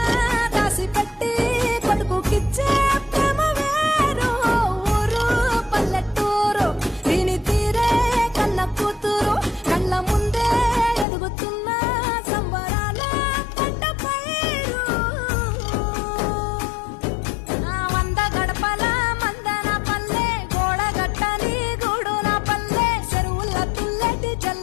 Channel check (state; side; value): drops out; right; at 11.1 s